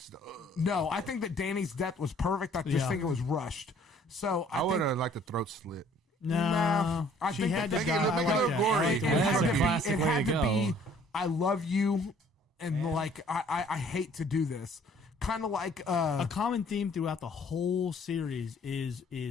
No, I think that Dany's death was perfect. I just Yeah. think it was rushed. So I think would have liked the throat slit. No, I she think had that to they- die. they- I they- like they- that. they- I like they- the they- way it That's had a to be. classic It way had to to be. go. I love you, and like I hate to do this. Kind of like A common theme throughout the whole series is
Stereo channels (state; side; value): normal; both; correlation 0.57